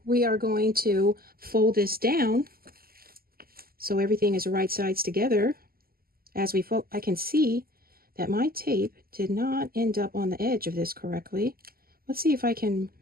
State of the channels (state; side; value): late; left; 0.43 ms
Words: we are going to fold this down so everything is right sides together. As we fold, I can see that my tape did not end up on the edge of this correctly. Let's see if I can